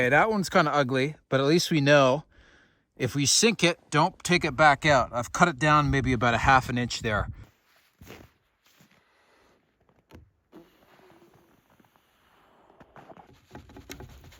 that one's kind of ugly, but at least we know if we sink it, don't take it back out. I've cut it down maybe about 1/2 inch there.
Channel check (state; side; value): identical; both; correlation 1.00